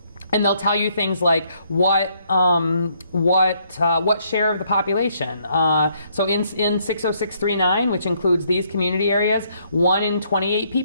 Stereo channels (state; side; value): inverted; both; correlation -0.70